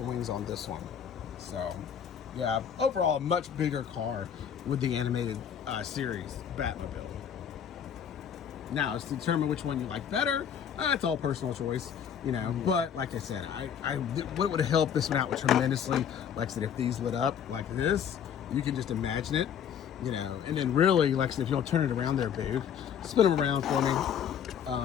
wings on this one. So, yeah, overall a much bigger car with the animated series Batmobile. Now, to determine which one you like better, it's all personal choice, you know. But like I said, what would have helped this one out tremendously, like I said, if these lit up like this, you can just imagine it, you know. And then really, like I said, if you don't turn it around there, Boog, spin them around for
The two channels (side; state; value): right; quieter; 8.4 dB